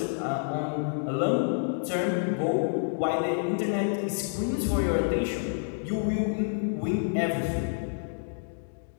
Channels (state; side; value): silent; right; digital silence